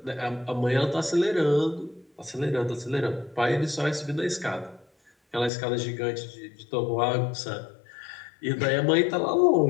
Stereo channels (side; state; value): right; drops out; at 5.5 s